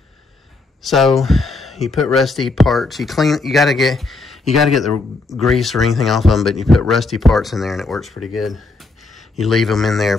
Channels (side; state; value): right; quieter; 3.5 dB